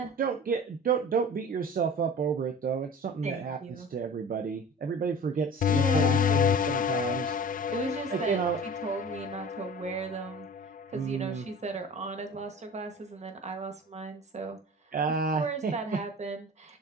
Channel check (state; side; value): normal; both; correlation 0.40